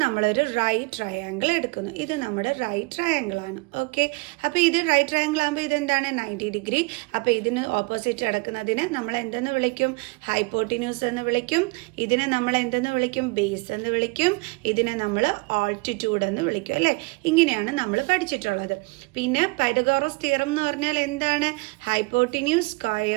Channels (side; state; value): left; quieter; 27.2 dB